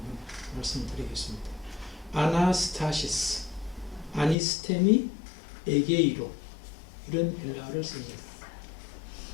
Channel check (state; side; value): drops out; right; at 4.4 s